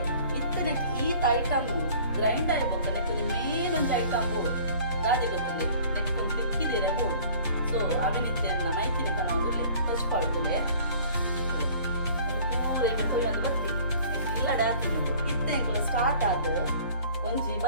ಇತ್ತನಕ್ಕೆ ಈತ ಐಟಮ್ ಗ್ರೈಂಡ್ ಆಗಿಬೇಕು ನೆಕ್ಕೊಂಡು ಮೇಲೊಂದು ಐಟಮ್ ಬೋಡು ಗಾದೆ ಗೊತ್ತಿಲ್ಲ ನೆಕ್ಕೊಂಡು ತಿಕ್ಕಿದ್ದೀರ ಬೋಡು ಸೊ ಅವಿನಿತ್ತೆಲ್ಲ ಮೈತಿನಿ ತನ ಒಂದು ತಚ್ಪಾಳ್ತದೆ ಪೂರ ಈಗ ತೊಯ್ಯೊಂದು ಬತ್ತಿ ಇಲ್ಲ ಡಾಕ್ತಿನಿ ಇತ್ತೆ ಎಂಕುಲ ಸ್ಟಾರ್ಟ್ ಆದ ಒಂಜಿ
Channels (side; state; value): both; inverted; correlation -0.49